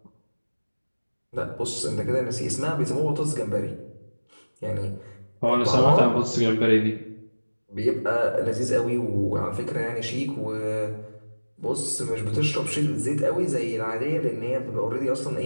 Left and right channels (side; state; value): both; inverted; correlation -1.00